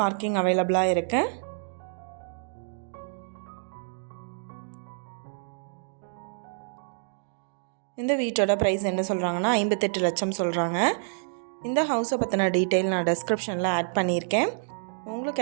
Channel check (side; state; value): left; silent; digital silence